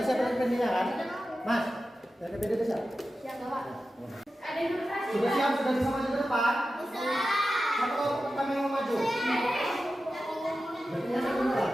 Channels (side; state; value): both; normal; correlation 0.93